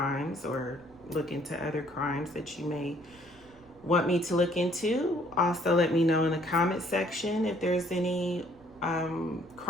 or look into other crimes that you may want me to look into, also let me know in the comment section if there's any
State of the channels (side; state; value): right; noise; rumble, 26 dB below the sound